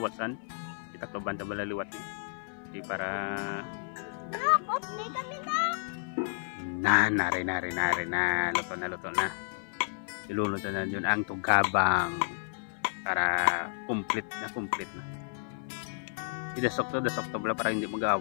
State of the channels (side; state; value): right; silent; 57 dB below the other